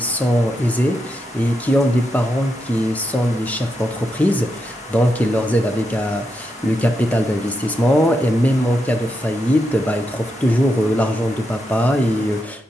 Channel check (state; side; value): normal; both; correlation 0.84